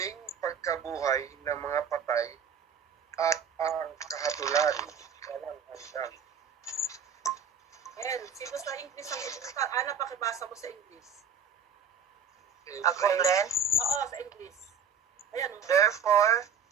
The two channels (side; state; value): left; quieter; 6.0 dB